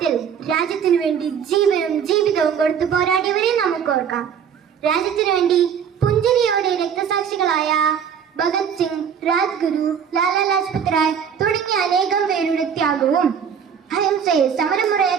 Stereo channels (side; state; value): left; quieter; 7.6 dB